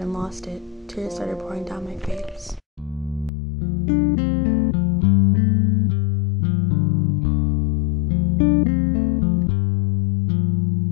and lost it. Tears started pouring down my face.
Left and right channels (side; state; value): right; drops out; at 3.3 s